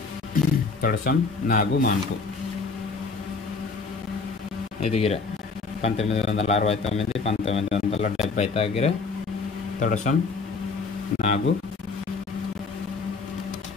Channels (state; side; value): quieter; right; 4.4 dB